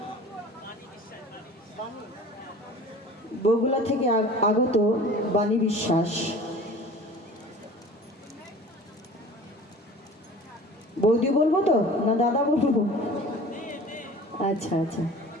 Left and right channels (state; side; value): normal; both; correlation 0.42